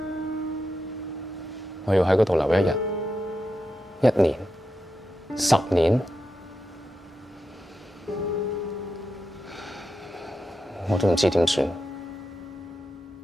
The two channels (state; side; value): normal; both; correlation 0.88